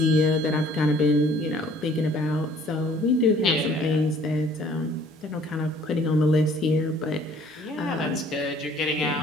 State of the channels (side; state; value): both; normal; correlation 0.56